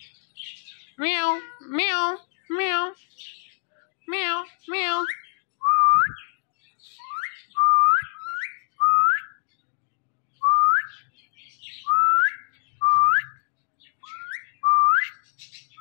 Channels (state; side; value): silent; right; digital silence